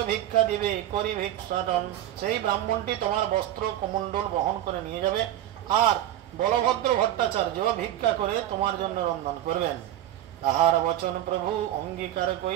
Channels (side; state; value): left; quieter; 12.8 dB